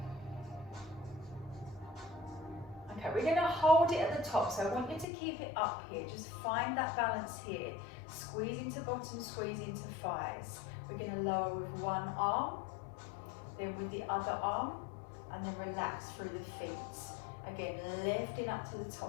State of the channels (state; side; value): drops out; right; at 5.1 s